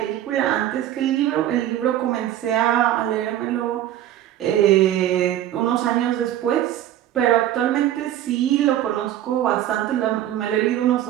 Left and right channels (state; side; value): quieter; left; 12.3 dB